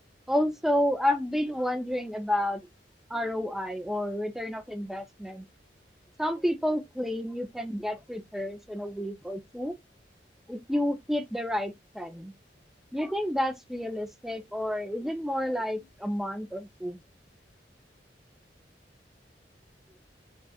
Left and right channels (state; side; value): normal; both; correlation 0.90